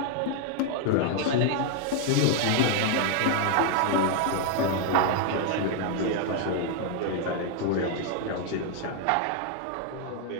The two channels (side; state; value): both; different; correlation 0.00